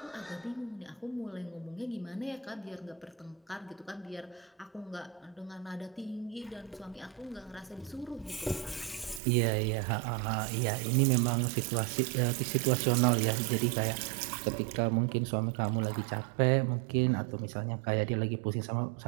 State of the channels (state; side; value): drops out; left; at 9.2 s